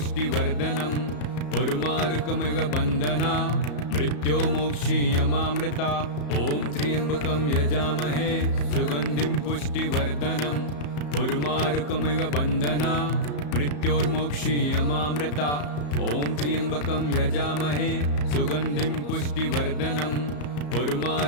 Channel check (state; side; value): late; right; 34 ms